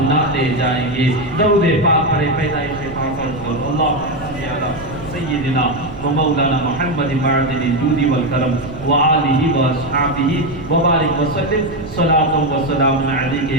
جائیں گے۔ درود پاک پڑھے پیدائش پاک پر اللہ سیدنا و مولانا محمد معدن الجود والکرم وآلہ واصحابہ وبارک وسلم، صلاۃ و سلام علیک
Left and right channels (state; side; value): noise; right; rumble, 15 dB below the sound